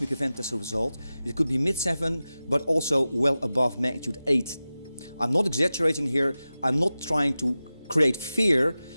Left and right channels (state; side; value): inverted; both; correlation -0.95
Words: event as a result. It could be mid-7, but also well above magnitude 8. I'm not exaggerating here. I'm not trying to create fear.